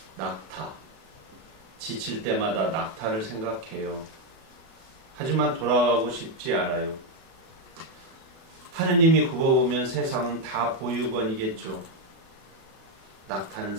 낙타. 지칠 때마다 낙타를 생각해요. 하지만 돌아가고 싶지 않아요. 하느님이 굽어보면 세상은 다 보육원이겠죠. 낙타는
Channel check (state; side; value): late; left; 36 ms